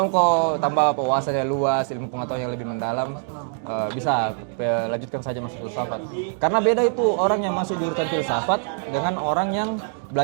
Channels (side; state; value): left; silent; 63 dB below the other